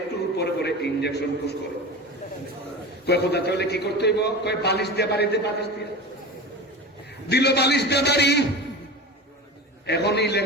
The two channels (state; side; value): normal; both; correlation 0.30